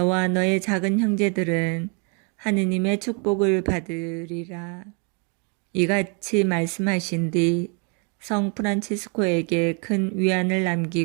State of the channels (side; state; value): left; quieter; 36.2 dB